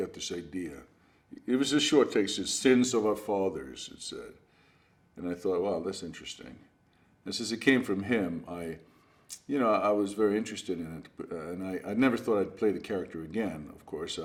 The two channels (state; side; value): identical; both; correlation 1.00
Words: this idea. It was a short text, it's Sins of Our Fathers, it said. And I thought, wow, that's interesting. And since it came from him, I was very interested in it. And I never thought I'd play the character again, of course.